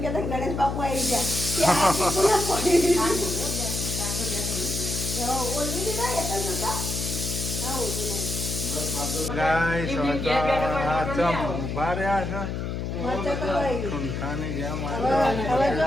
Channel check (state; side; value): noise; left; hum, 3 dB below the sound